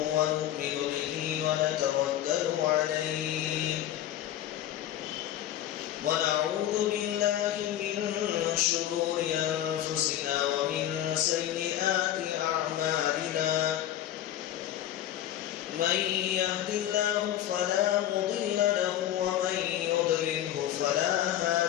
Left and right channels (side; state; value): right; quieter; 12.0 dB